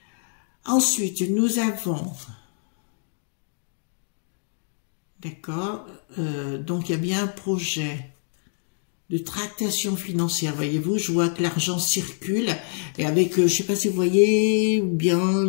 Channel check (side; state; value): right; silent; digital silence